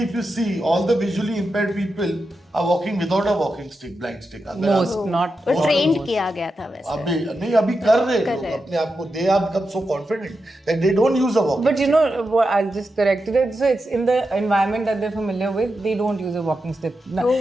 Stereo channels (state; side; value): normal; both; correlation 0.88